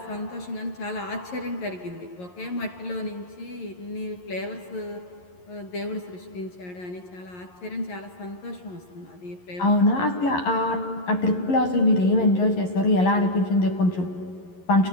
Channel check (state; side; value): late; right; 11 ms